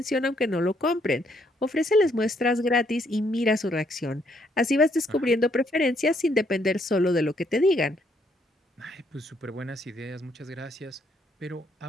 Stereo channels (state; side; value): normal; both; correlation 0.71